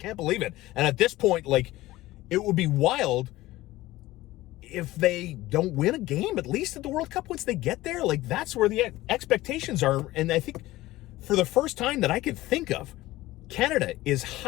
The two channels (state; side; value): quieter; right; 17.4 dB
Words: believe it. And at this point, it would be wild if they don't win a game, at least at the World Cup once they get there. That's where the expectations are. And I think for the first time that I could think of, Canada is